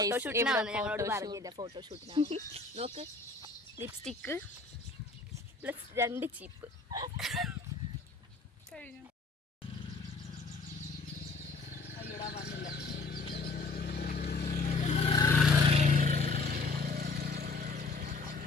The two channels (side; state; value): right; quieter; 3.8 dB